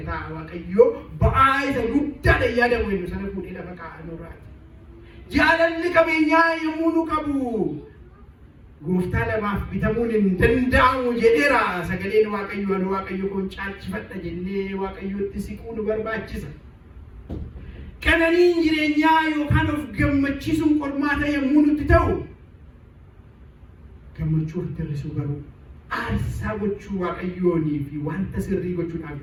waaqayyo ba'aa isa guddaadha yaadamu inni sana fuudhee lafa kaa'anurraati. Jaalalli qabeenyaa yommuu nu qabu gooftaa lamaaf bitamuun hin danda'amu jedheera sagaleen waaqayyo anu waaqayyo kun caalchifadha jennee waaqayyotti siquu nu barbaachisa. Qananiin jireenyaa yookaan of gammachiisuun qormaata yommuu nutti ta'u gammachuu ofitti hir'isuu garuu aarsaa gochuu waaqayyoonii fi wanta sirrii gochuudhaaf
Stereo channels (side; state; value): both; identical; correlation 1.00